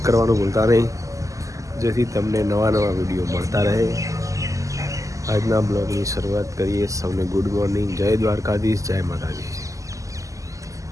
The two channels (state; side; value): late; left; 0.16 ms